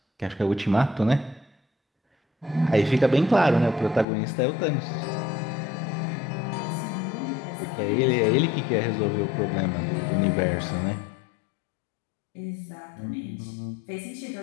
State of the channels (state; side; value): drops out; right; at 4.0 s